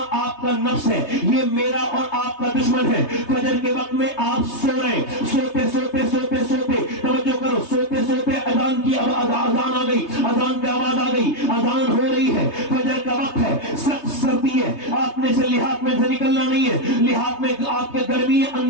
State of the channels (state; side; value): late; right; 3.2 ms